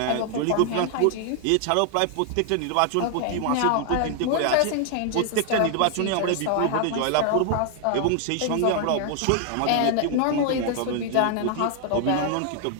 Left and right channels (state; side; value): different; both; correlation 0.00